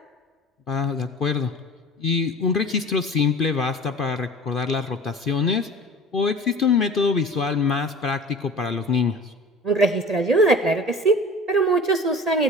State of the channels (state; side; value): normal; both; correlation 0.40